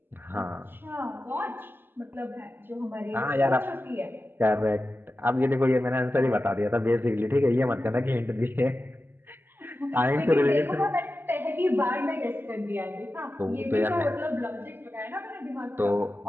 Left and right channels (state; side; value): late; left; 0.097 ms